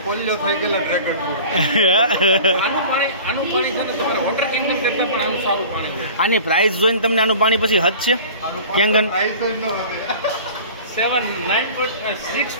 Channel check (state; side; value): inverted; both; correlation -0.41